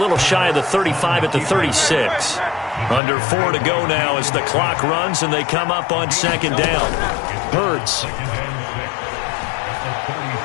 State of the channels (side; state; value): right; drops out; at 3.0 s